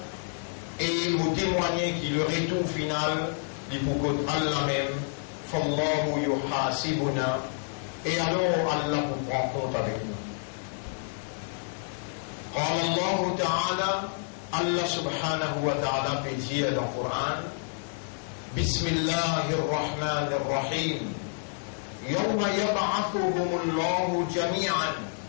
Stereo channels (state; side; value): silent; right; digital silence